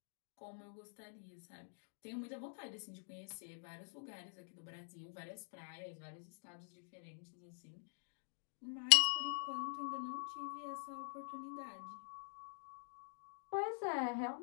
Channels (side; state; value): right; silent; digital silence